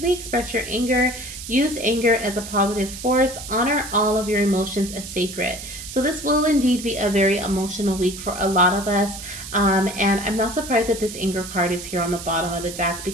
express your anger. Use anger as a positive force. Honor all of your emotions as sacred. So this will indeed be a very emotional week for a lot of us. And I'm not surprised that this anger card is here on the bottom of the deck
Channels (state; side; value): noise; right; hiss, 11 dB below the sound